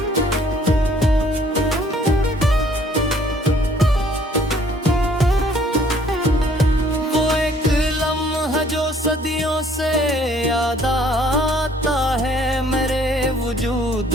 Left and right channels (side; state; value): both; normal; correlation 0.60